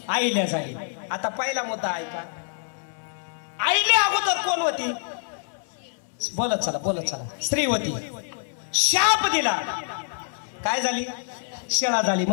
आईल्या झाली. आता पहिला मुद्दा ऐका, आईने अगोदर कोण होती, बोलत चला बोलत चला, स्त्री होती. शाप दिला, काय झाली, शिळा झाली,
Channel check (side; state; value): right; silent; 61 dB below the other